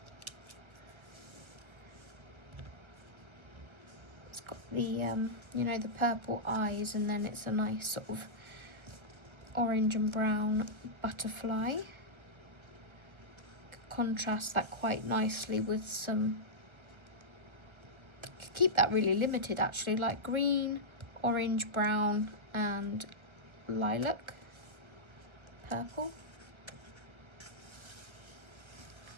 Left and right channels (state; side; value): late; left; 1.3 ms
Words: It's got the, you know, the purple eyes, and then it's a nice sort of orange and brown butterfly. Contrast that quite nicely with some, could keep that really limited actually, like green, orange, brown and lilac, purple.